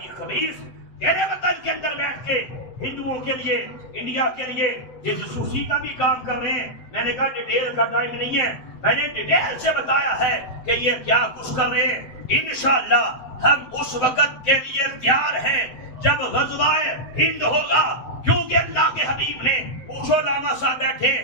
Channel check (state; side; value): late; right; 7.8 ms